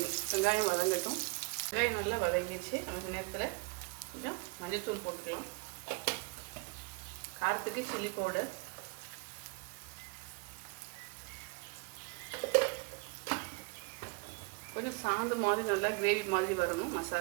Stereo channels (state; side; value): quieter; left; 30.2 dB